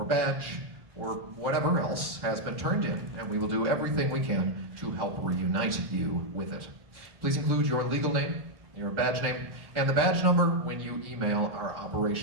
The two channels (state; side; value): late; left; 1.1 ms